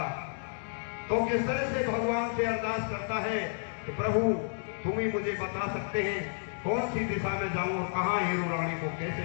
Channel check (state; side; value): silent; right; digital silence